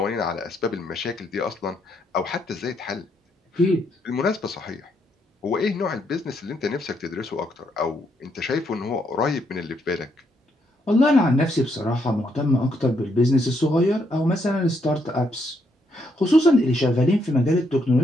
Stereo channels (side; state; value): both; normal; correlation 0.75